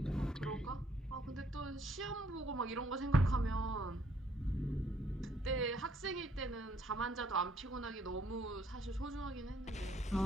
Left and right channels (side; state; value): both; normal; correlation 0.66